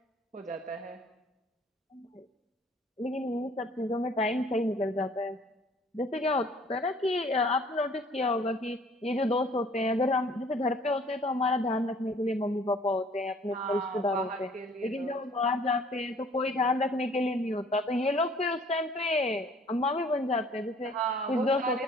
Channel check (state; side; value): normal; both; correlation 0.56